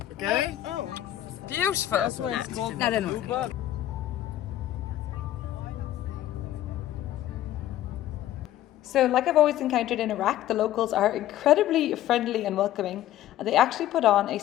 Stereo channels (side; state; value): right; quieter; 13.2 dB